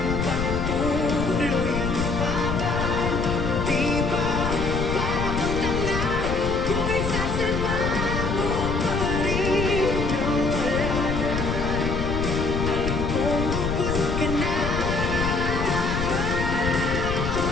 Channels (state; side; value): noise; left; rumble, 2 dB below the sound